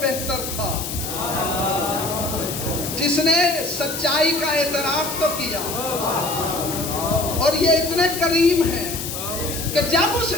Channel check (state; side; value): noise; left; hiss, 6 dB below the sound